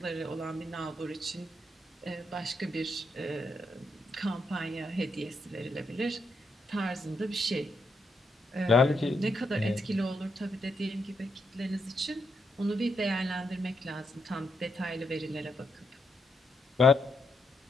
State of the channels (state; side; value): normal; both; correlation 0.80